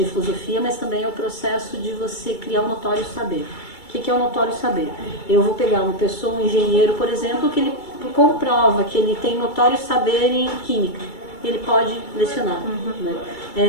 e filosofia, mas também é o processo de você criar um notório saber. O que é o notório saber? Eu vou pegar uma pessoa, um engenheiro, por exemplo, que ele comprova que ele tem notório saber em química, ele pode lecionar. Né?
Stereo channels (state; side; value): late; right; 2.3 ms